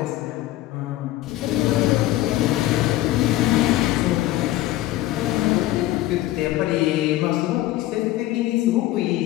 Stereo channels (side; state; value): right; quieter; 15.7 dB